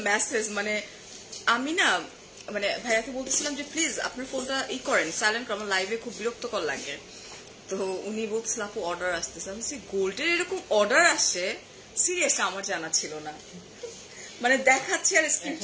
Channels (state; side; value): identical; both; correlation 1.00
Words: মেসেজ, মানে আমি না মানে ভাইয়াকে বলতেছিলাম যে প্লিজ আপনার ফোনটা করেন, সাইলেন্ট করেন, আমার লাইভে খুব বিরক্তকর লাগে। তো উনি বলছিল আপু অর্ডার আসতেছে। আমি বলছি গোল্ডের এরকম অর্ডার আসে? সিরিয়াসলি আমার জানা ছিল না, মানে দেখাচ্ছে আর